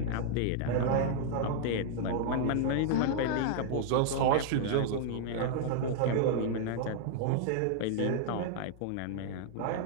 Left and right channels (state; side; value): different; both; correlation -0.01